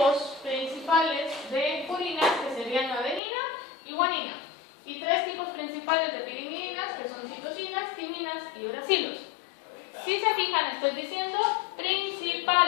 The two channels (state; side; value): drops out; right; at 3.2 s